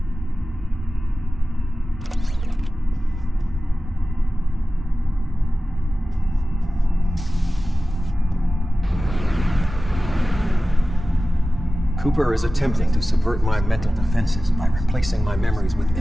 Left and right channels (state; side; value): normal; both; correlation 0.96